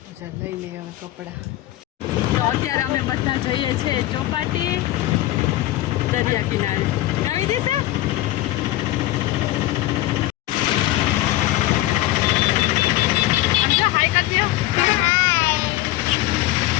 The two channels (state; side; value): quieter; right; 16.0 dB